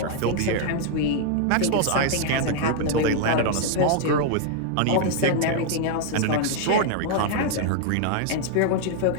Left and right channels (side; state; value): both; different; correlation 0.00